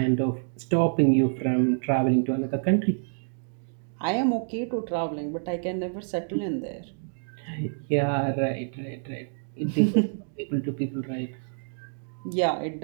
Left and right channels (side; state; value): left; silent; digital silence